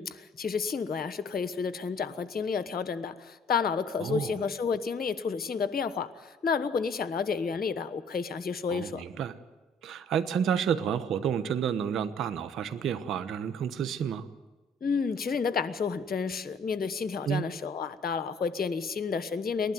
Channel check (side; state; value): both; normal; correlation 0.57